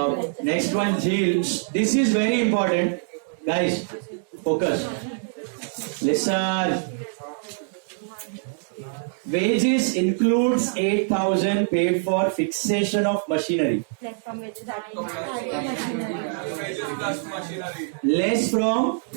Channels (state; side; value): silent; left; digital silence